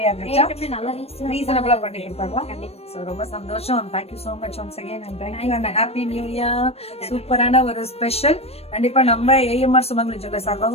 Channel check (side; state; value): right; late; 0.29 ms